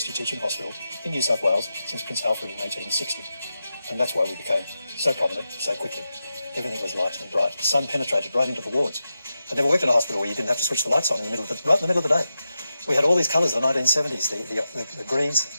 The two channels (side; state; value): both; inverted; correlation -0.90